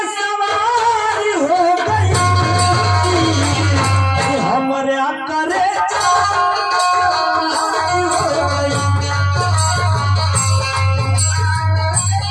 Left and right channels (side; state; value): both; identical; correlation 1.00